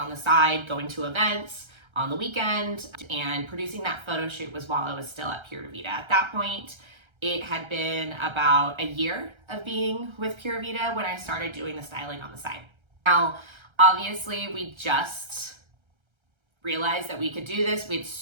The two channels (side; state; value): left; late; 1.3 ms